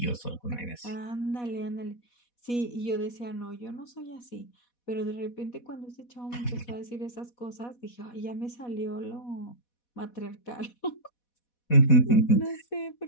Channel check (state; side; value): late; right; 4.1 ms